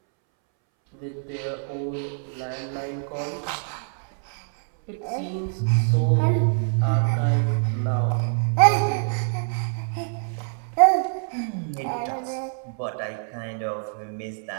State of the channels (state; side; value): silent; left; 62 dB below the other